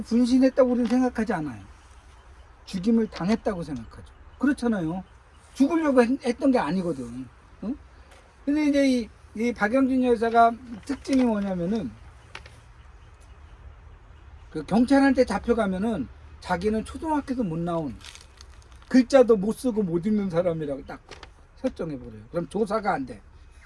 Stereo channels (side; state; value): both; identical; correlation 1.00